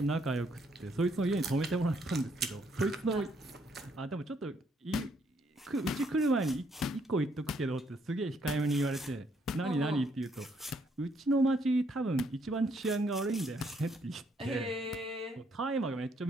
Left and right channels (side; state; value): both; normal; correlation 0.71